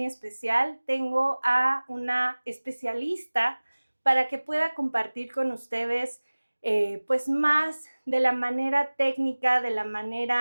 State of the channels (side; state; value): both; inverted; correlation -1.00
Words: especial, tengo a una especialista para que pueda compartir con ustedes pues más de la manera técnica, de la